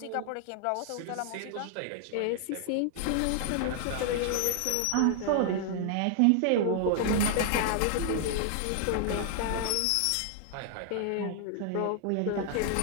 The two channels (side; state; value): both; different; correlation 0.00